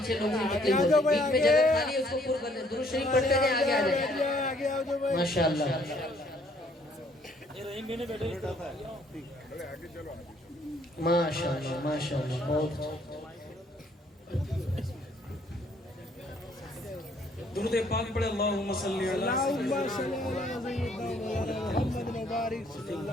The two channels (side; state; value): both; normal; correlation 0.64